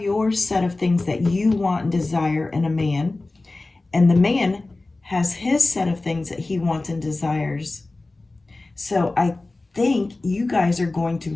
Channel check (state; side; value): quieter; right; 3.1 dB